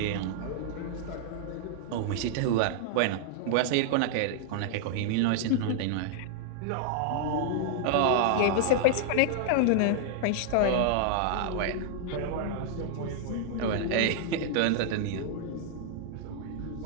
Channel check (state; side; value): different; both; correlation -0.01